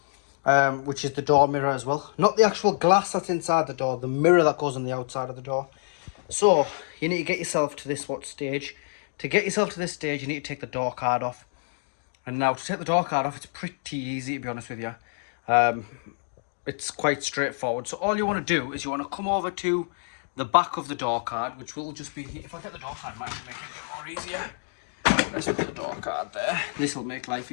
which is the door mirror as well. Not the actual glass that's inside the door, the mirror that goes on the outside of the door. So you need to get yourself to this stage. To get yourself to this stage, you need to take the door card off. And now to take the door card off, it's pretty easy, to be honest with you. It's quite straightforward. So all you want to do is you want to come over to the back of the door card, which will just be here. If I get the door card, it might make it a bit more easier. Let's put the door card there. This will make life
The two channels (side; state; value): right; silent; digital silence